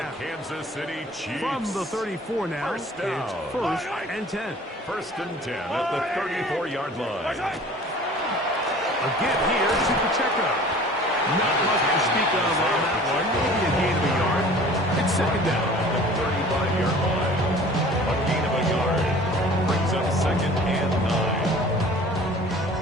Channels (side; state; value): both; normal; correlation 0.46